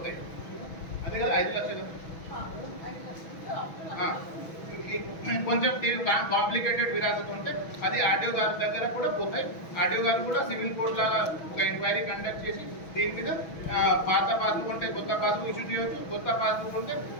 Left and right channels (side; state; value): right; late; 6.2 ms